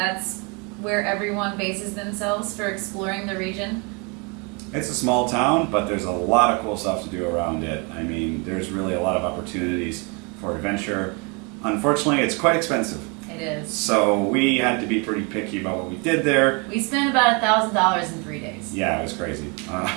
where everyone bases themselves for exploring the region. It's a small town, but there's a lot of cool stuff to do around it. I mean, there's really a lot of opportunities for adventure. Unfortunately, it's quite expensive. It is. So we had to be pretty picky about what we did there. We spent about $1,000 in 3 days. Yeah, it was crazy.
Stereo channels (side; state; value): left; quieter; 31.9 dB